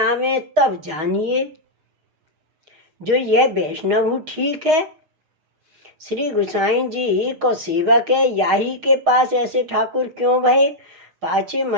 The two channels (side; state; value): left; late; 6.4 ms